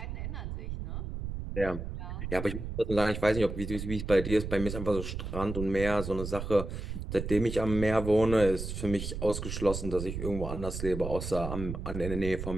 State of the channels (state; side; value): noise; right; rumble, 6 dB below the sound